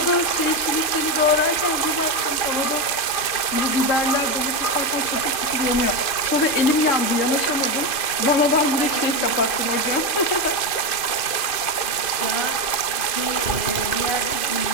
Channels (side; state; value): right; late; 2.6 ms